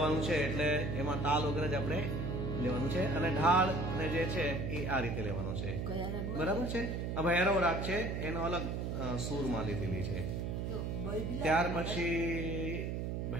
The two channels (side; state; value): right; noise; hum, 2 dB below the sound